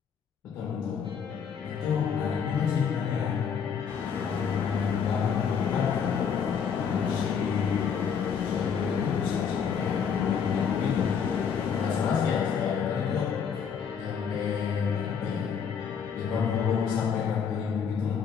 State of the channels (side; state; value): right; quieter; 6.9 dB